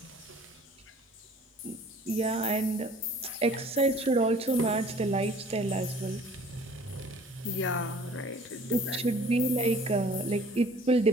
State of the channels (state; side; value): normal; both; correlation 0.51